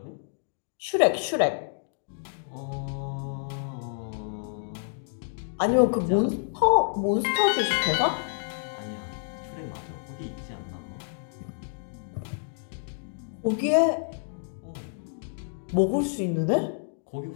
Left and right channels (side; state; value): right; silent; digital silence